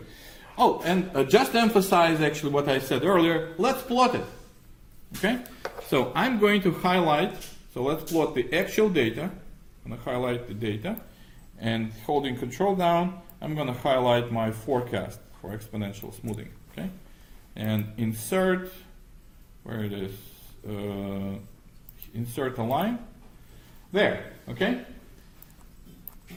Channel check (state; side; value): identical; both; correlation 1.00